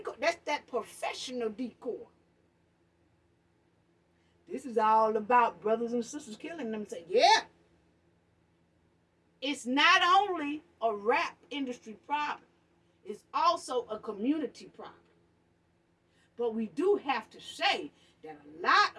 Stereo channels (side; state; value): both; identical; correlation 1.00